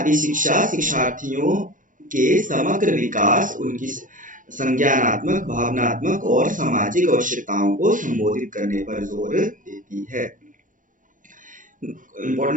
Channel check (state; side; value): late; left; 0.38 ms